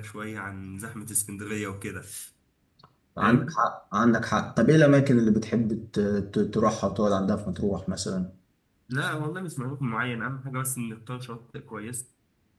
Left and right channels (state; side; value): identical; both; correlation 1.00